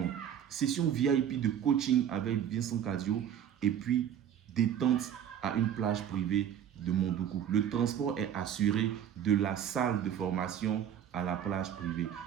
Session VIP de coaching avec Vincent Cadio et puis détente à une plage privée de Mondoukou. Le transport est assuré de la salle de formation à la plage privée.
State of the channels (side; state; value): left; quieter; 9.5 dB